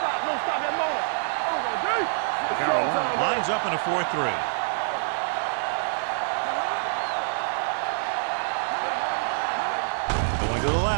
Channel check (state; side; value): silent; left; digital silence